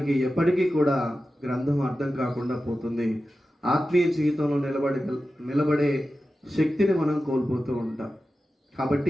ఎప్పటికీ కూడా గ్రంథం అర్థం కాకుండా పోతుంది. ఆత్మీయ జీవితంలో నిలబడే శక్తిని మనం కోల్పోతూ ఉంటాం.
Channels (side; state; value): both; normal; correlation 0.93